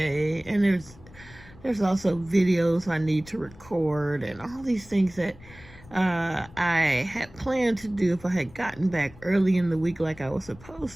And there's also videos I need to record and all these things that I had planned to do if I had gotten back early in the week like I was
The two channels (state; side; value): noise; left; rumble, 21 dB below the sound